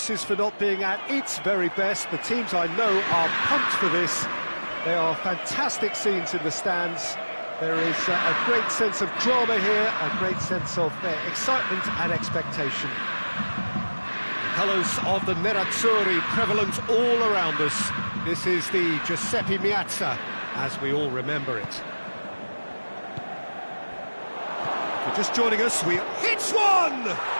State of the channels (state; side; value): inverted; both; correlation -1.00